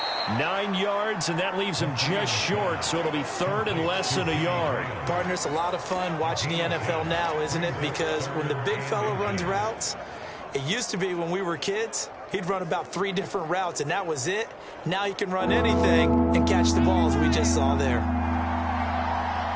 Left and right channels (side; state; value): both; identical; correlation 1.00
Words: 9 yards, and that leaves him just short, so it'll be 3rd and less than a yard. Partner, it's a lot of fun watching the NFL now, isn't it? Because when the big fella runs routes, it used to be when we were kids, he'd run about 3 different routes, and that was it. Now he can run anything and catch the balls we just saw there.